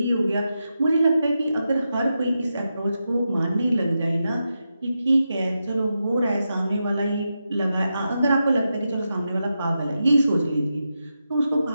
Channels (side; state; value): both; inverted; correlation -0.88